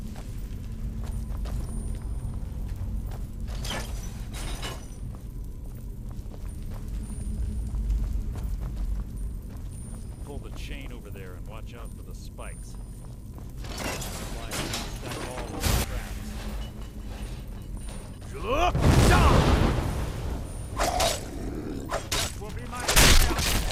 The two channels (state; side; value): identical; both; correlation 1.00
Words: Pull the chain over there and watch out for the spikes. Stack all those traps. That will be my